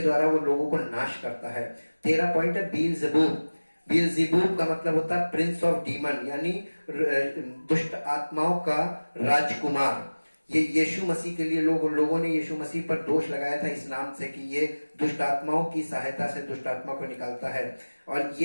द्वारा वो लोगों को नाश करता है। 13 पॉइंट है बीलज़ेबूब। बीलज़ेबूब का मतलब होता है प्रिंस ऑफ डीमन, यानी दुष्ट आत्माओं का राजकुमार। ये यीशु मसीह के लिए लोगों ने यीशु मसीह पर दोष लगाया था इस नाम से कि ये दुष्ट आत्माओं की सहायता से दुष्ट आत्मा को निकालता है, और ये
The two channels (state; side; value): inverted; both; correlation -1.00